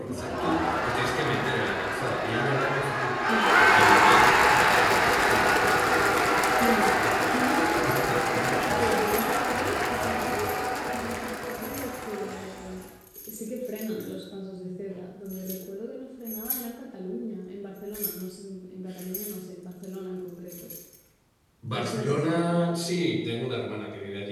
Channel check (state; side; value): identical; both; correlation 1.00